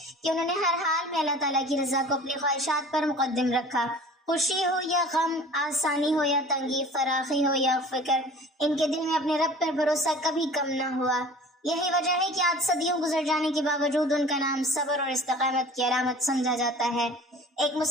کہ انہوں نے ہر حال میں اللہ تعالیٰ کی رضا کو اپنی خواہشات پر مقدم رکھا۔ خوشی ہو یا غم، آسانی ہو یا تنگی، فراخی ہو یا فکر، ان کے دل میں اپنے رب پر بھروسہ کبھی کم نہ ہوا۔ یہی وجہ ہے کہ آج صدیوں گزر جانے کے باوجود ان کا نام صبر اور استقامت کی علامت سمجھا جاتا ہے۔ ایک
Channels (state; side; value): normal; both; correlation 0.44